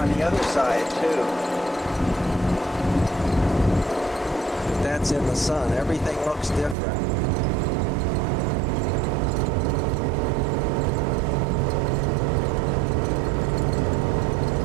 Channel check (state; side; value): drops out; left; at 6.8 s